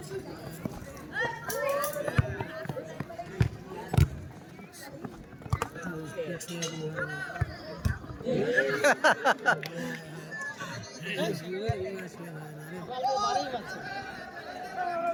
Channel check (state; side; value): identical; both; correlation 1.00